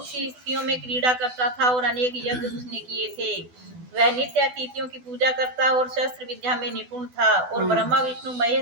सी स्त्रियों में क्रीड़ा करता था और अनेक यज्ञ उसने किए थे। वह नित्य अतिथियों की पूजा करता और शस्त्र विद्या में निपुण था और ब्रह्मा, विष्णु,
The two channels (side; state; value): left; late; 12 ms